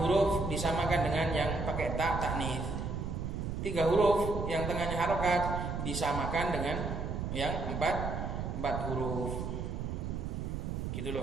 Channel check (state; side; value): noise; right; rumble, 3 dB below the sound